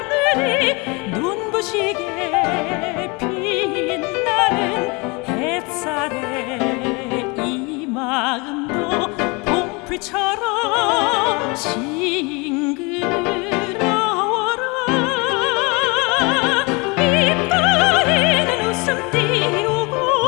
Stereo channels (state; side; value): quieter; right; 28.3 dB